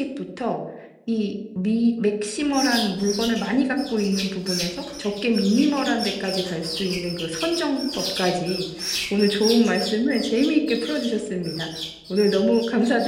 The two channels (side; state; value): both; identical; correlation 1.00